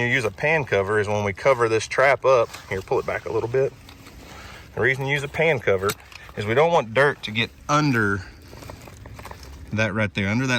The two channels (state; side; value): identical; both; correlation 1.00